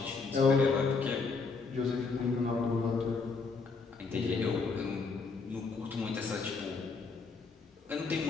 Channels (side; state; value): right; quieter; 4.5 dB